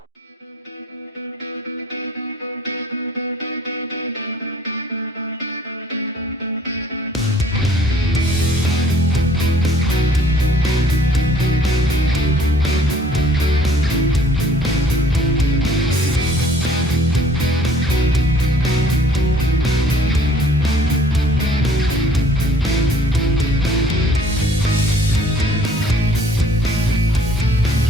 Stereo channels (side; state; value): both; normal; correlation 0.57